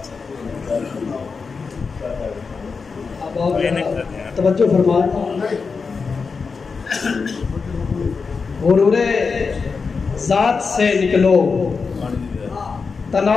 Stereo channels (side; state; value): right; quieter; 4.9 dB